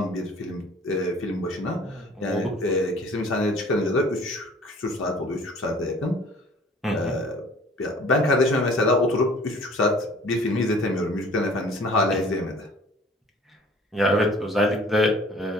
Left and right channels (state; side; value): normal; both; correlation 0.51